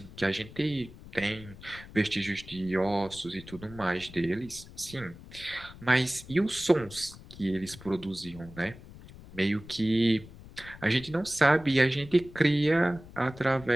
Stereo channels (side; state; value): left; noise; rumble, 18 dB below the sound